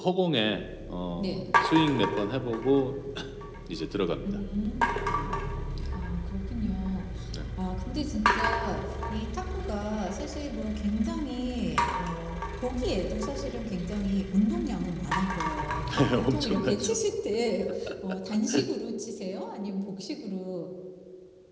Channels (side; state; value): both; identical; correlation 1.00